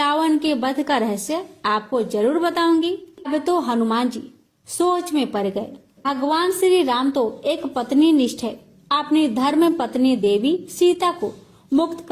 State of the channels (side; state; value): both; identical; correlation 1.00